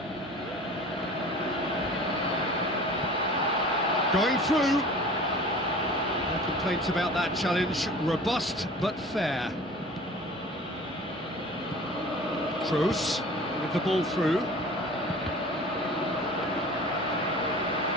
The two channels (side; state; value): both; normal; correlation 0.42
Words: Going through. No complaints about that challenge. Robust but fair. Kroos with the ball through.